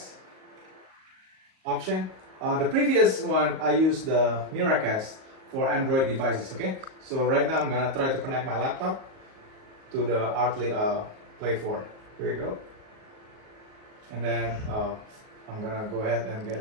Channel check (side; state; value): left; late; 38 ms